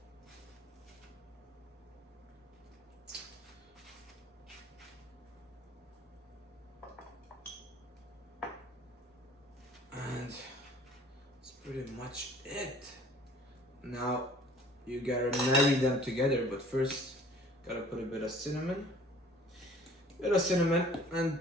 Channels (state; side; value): normal; both; correlation 0.52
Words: And that's pretty much it. Now you gotta marry them together, but first gotta put a bit of cinnamon. And